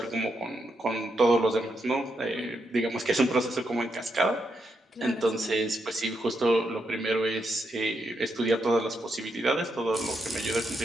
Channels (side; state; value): both; normal; correlation 0.82